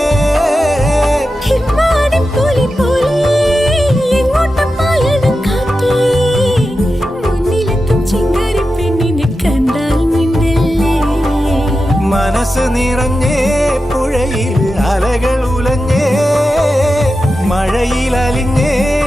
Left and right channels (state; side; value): normal; both; correlation 0.91